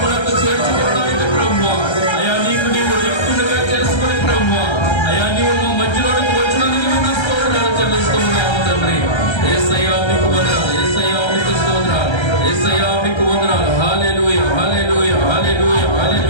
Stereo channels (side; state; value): right; late; 1.3 ms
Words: చేర్చుకోవడానికి ప్రభు అయ్యా నీకు నీవు రిక్తునిగా చేసుకుని ప్రభు అయ్యా నీవు మా మధ్యలోకి వచ్చినందుకు మీకు స్తోత్రాలు చెల్లిస్తూ ఉన్నాము తండ్రి. యేసయ్యా మీకు వందనాలు. యేసయ్యా మీకు స్తోత్రాలు. యేసయ్యా మీకు వందనాలు. హల్లెలూయా హల్లెలూయా హల్లెలూయా